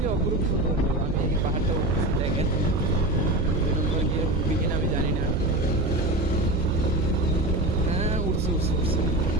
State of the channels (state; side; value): noise; right; hum, 2 dB below the sound